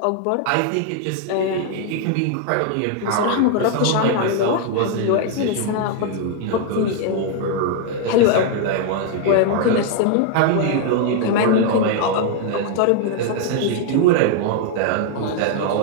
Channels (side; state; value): both; different; correlation 0.00